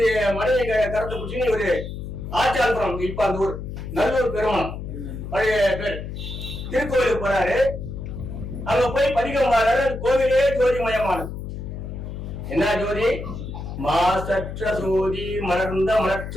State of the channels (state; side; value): noise; left; hum, 8 dB below the sound